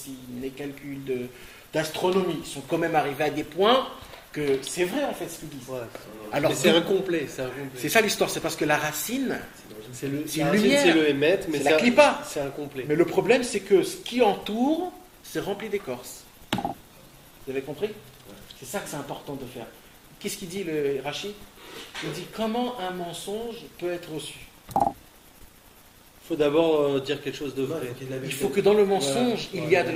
les calculs d'astronomie sont quand même arrivés à des points que c'est vrai en fait ce qu'ils disent. Ouais. Alors, Mais c'est incomplet. c'est ça l'histoire, c'est parce que la racine, c'est une La racine, lumière. c'est le émet, mais C'est la clipa. c'est incomplet. Mais le problème, c'est que ce qui entoure, c'est rempli d'écorce. Vous avez compris? C'est ça que c'est important de faire. Qu'est-ce qu'il dit le Rachid? Il dit comment un mensonge peut être reçu. Il faut d'abord dire quelque chose de vrai. Il faut que dans le mensonge, il y a de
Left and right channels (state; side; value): identical; both; correlation 1.00